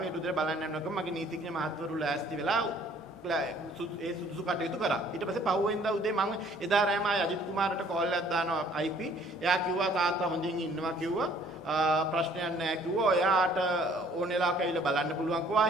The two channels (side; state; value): both; normal; correlation 0.58